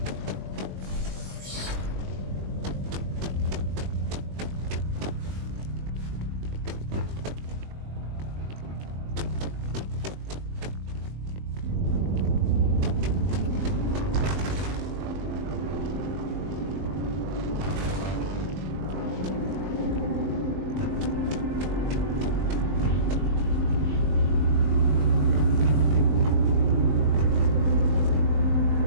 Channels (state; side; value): late; left; 21 ms